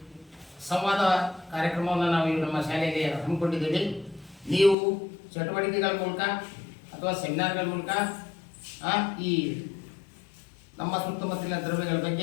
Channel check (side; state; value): right; drops out; at 4.8 s